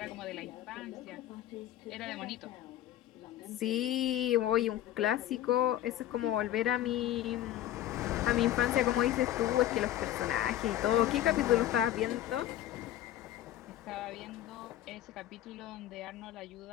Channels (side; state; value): right; quieter; 12.8 dB